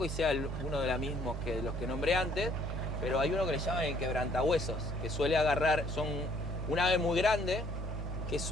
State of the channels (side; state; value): both; normal; correlation 0.63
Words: y sea uno de los mismos que los que nombré antes, pero hay uno que le llaman el quebrantahuesos, que suele agarrar, son un ave muy grande, que